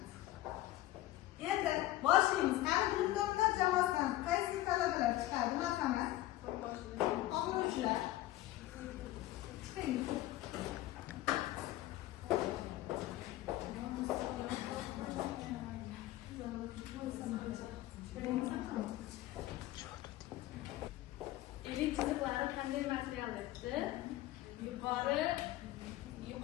Endi boshlaymiz. Qani bilimdonlar jamoasidan qaysi talabalar chiqadi? Marhamat. O'quvchilar. Chiqing. Elin chiziqlari qanday material debdi?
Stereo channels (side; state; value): right; quieter; 15.8 dB